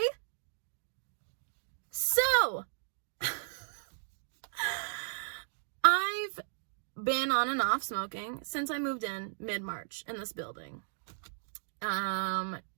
So, I've been on and off smoking since I moved in mid-March in this building.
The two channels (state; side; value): silent; left; digital silence